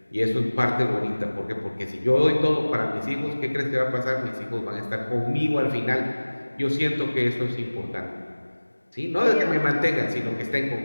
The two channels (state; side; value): inverted; both; correlation -1.00